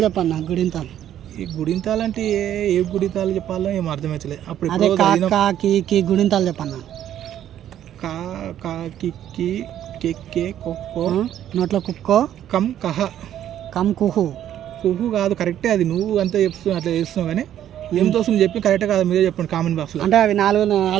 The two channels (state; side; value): quieter; left; 11.1 dB